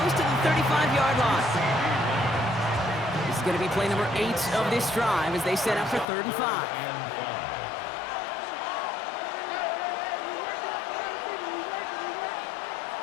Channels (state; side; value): drops out; right; at 6.1 s